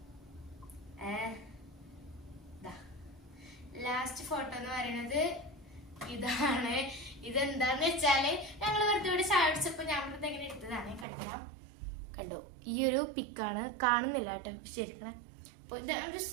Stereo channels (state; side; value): drops out; left; at 11.1 s